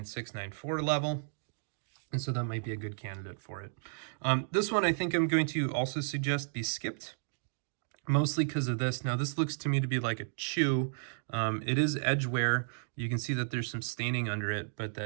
9.4 level. And so that might be a good candidate for it. This one I think I'm going to also suggest be skipped, mostly because of this. Now this looks to me to be like a chew. It is edge wear. You can see that there's some staining under it, but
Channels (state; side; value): silent; left; digital silence